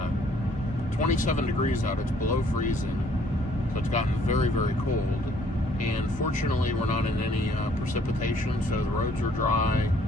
27 degrees out, it's below freezing, so it's gotten very, very cold. And fortunately, we're not in any precipitation, so the roads are dry,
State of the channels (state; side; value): normal; both; correlation 0.62